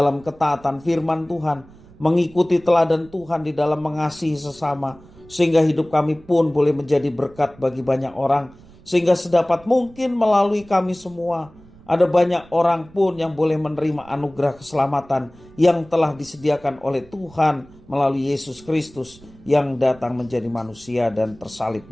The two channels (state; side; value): noise; right; rumble, 24 dB below the sound